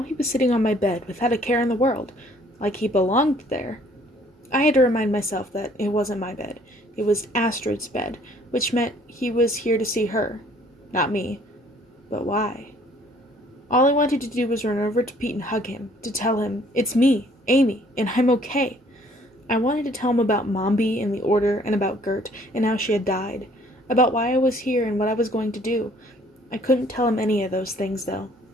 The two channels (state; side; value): normal; both; correlation 0.59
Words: he was sitting on my bed without a care in the world, like he belonged there. I had to remind myself that it wasn't my bed. It was Astrid's bed, which meant he was here to see her, not me. But why? All I wanted to do was run over to Pete and hug him, to tell him, it's me, Amy, and I'm okay. I wanted to tell him about Mombi and the Order, and about Gert, and how she had died. About why I was here and what I was going to do. I couldn't tell him any of those things, though.